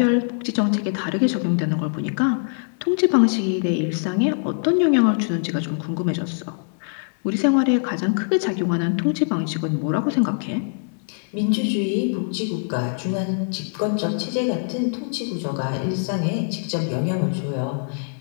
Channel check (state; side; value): silent; right; digital silence